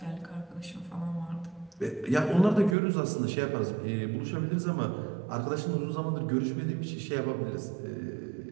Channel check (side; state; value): left; drops out; at 2.8 s